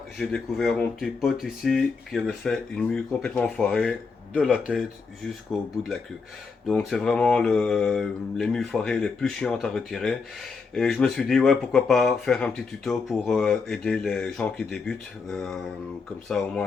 j'ai découvert mon petit pote ici qui avait fait une mue complètement foirée de la tête jusqu'au bout de la queue. Donc c'est vraiment les mues foirées les plus chiantes à retirer et je me suis dit ouais pourquoi pas faire un petit tuto pour aider les gens qui débutent, comme ça au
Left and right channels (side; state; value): right; quieter; 4.8 dB